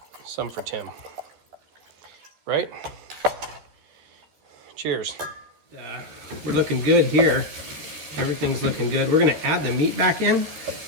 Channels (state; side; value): late; left; 13 ms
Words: some for Tim. Right? Cheers. We're looking good here. Everything's looking good. We're gonna add the meat back in.